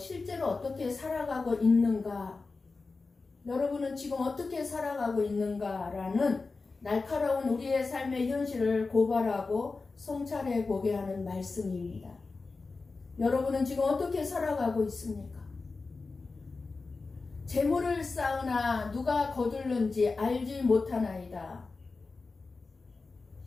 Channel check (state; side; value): quieter; right; 4.0 dB